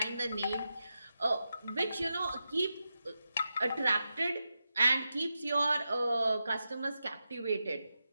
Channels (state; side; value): inverted; both; correlation -0.89